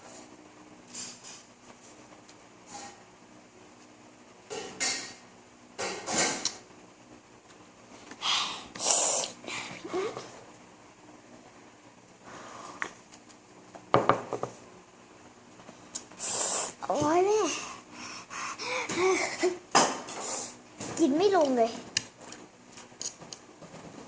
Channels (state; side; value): identical; both; correlation 1.00